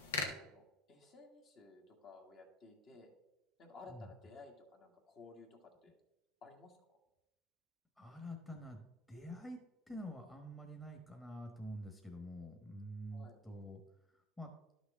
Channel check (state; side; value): normal; both; correlation 0.42